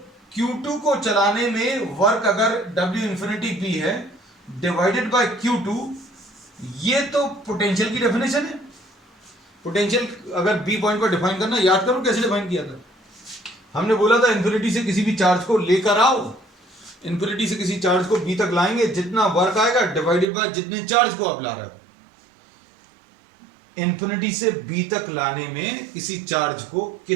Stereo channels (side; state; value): left; drops out; at 20.3 s